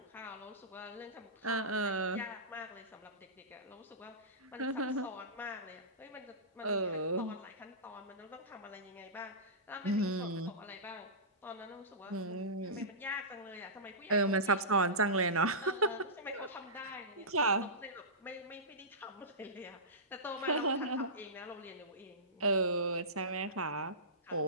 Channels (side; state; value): both; normal; correlation -0.19